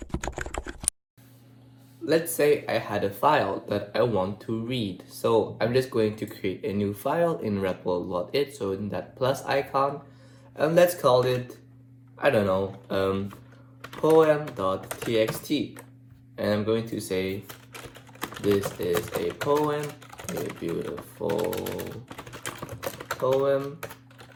Let's say I had a file that I want to read. So I'm just going to create a new file in REPL.it, so in that plus icon, and let's call it, I don't know, poem.txt. And I'm going to say, this is a poem, a beautiful poem,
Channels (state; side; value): identical; both; correlation 1.00